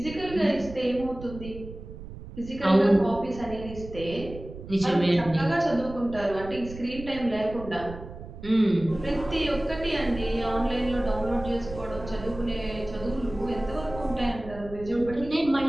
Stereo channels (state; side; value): noise; right; rumble, 13 dB below the sound